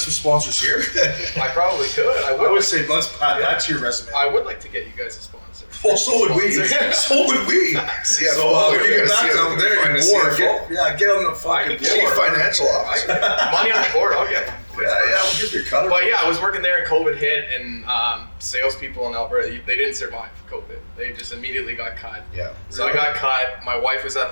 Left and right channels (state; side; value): inverted; both; correlation -1.00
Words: some sponsors here? I probably could. I would say let's add that to your resume. I would like to get you guys a sponsor. Well, so would we. So would we. CFO, you get back down there, you're bored. Get on the fucking Chief Financial Officer. Money on the board, I'll get one. we'll give you a cut. But yeah, I was working there and COVID hit, and salespeople in Alberta, they didn't survive COVID. They just immediately got cut. Yeah. So I got cut. My wife was at